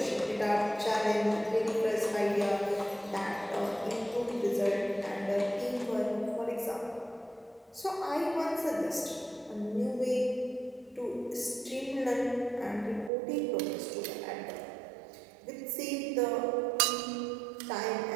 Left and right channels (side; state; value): left; drops out; at 13.1 s